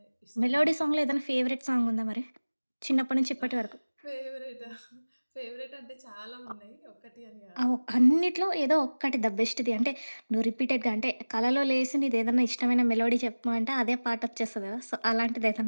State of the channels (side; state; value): both; inverted; correlation -1.00